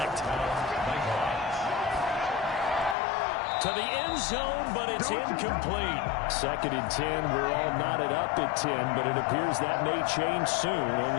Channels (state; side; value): drops out; right; at 3.0 s